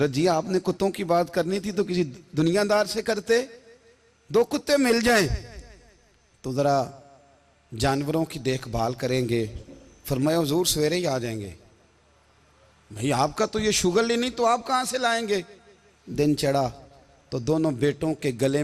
जी आपने कुत्तों की बात करनी थी तो किसी दुनियादार से करते, दो कुत्ते मिल जाएं तो ज़रा जानवरों की देखभाल करेंगे। फरमाया हुजूर सवेरे ही आ जाएंगे। भाई आपका तो ये शुगर ही नहीं, तो आप कहाँ से लाएंगे। दिन चढ़ा तो दोनों बेटों के गले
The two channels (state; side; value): identical; both; correlation 1.00